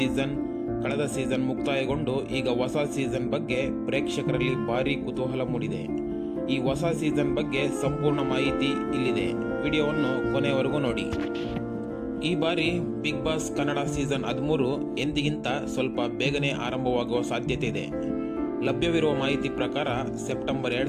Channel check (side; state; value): both; identical; correlation 1.00